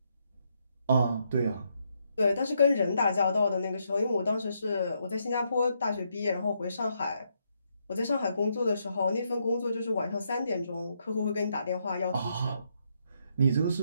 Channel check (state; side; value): inverted; both; correlation -0.77